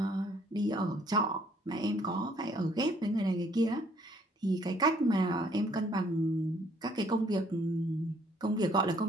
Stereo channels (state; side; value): normal; both; correlation 0.63